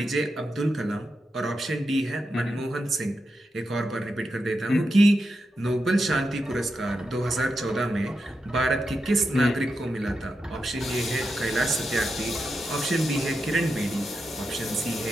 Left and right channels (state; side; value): normal; both; correlation 0.87